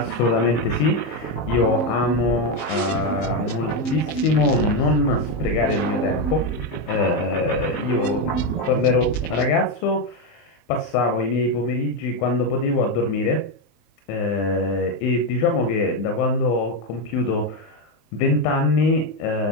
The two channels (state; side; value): late; right; 19 ms